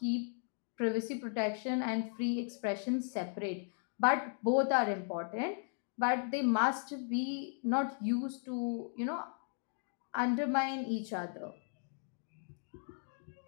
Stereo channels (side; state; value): right; silent; 53 dB below the other